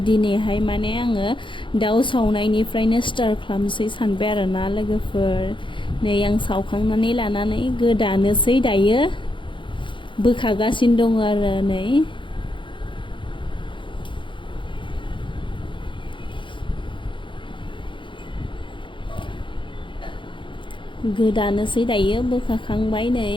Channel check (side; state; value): right; late; 0.24 ms